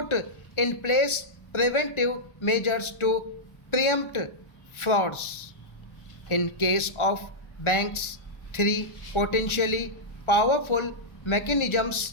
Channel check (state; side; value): late; right; 1.4 ms